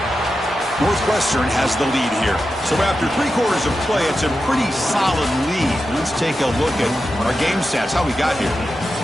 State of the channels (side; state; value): both; normal; correlation 0.90